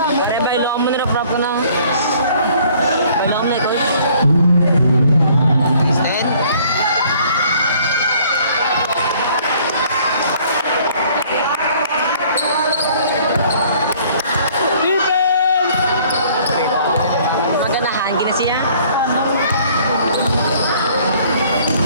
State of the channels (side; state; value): both; inverted; correlation -0.57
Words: Eh, bailo mo na prap ka na. Bailo mo na ikaw. Stand. Maganahan, ginasiya.